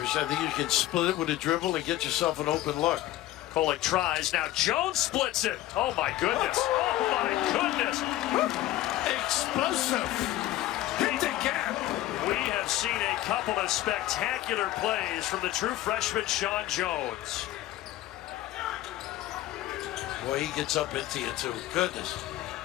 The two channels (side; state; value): right; quieter; 14.8 dB